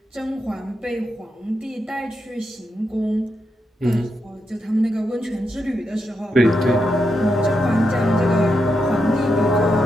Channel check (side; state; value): both; normal; correlation 0.84